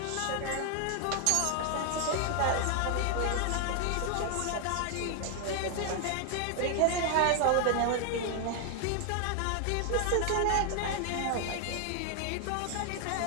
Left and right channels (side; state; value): both; different; correlation 0.00